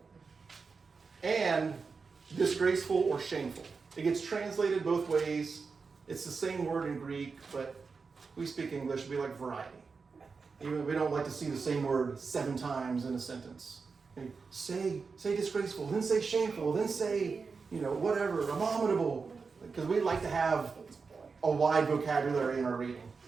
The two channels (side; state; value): left; quieter; 4.9 dB